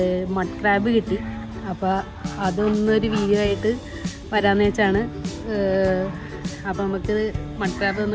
മഡ് ക്രാബ് കിട്ടി. അപ്പോൾ അതൊന്നൊരു വീഡിയോ ആയിട്ട് വരാമെന്ന് വെച്ചാണ്. അപ്പോൾ നമുക്ക് മഡ് ക്രാബ്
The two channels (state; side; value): identical; both; correlation 1.00